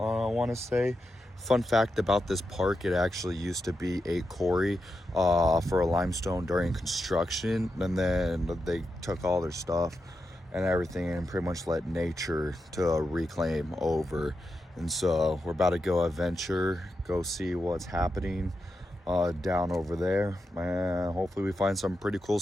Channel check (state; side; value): normal; both; correlation 0.87